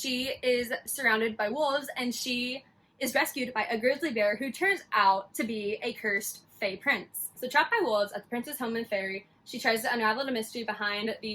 is surrounded by wolves, and she is rescued by a grizzly bear who turns out to be a cursed Fae prince. So trapped by wolves at the prince's home in Fairy, she tries to unravel the mystery behind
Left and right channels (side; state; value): both; identical; correlation 1.00